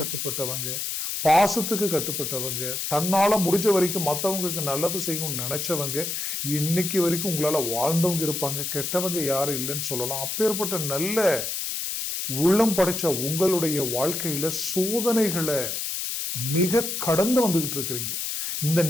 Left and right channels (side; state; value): left; noise; hiss, 3 dB below the sound